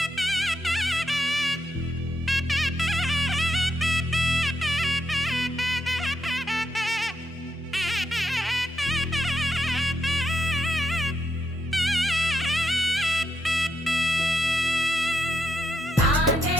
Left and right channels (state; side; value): normal; both; correlation 0.79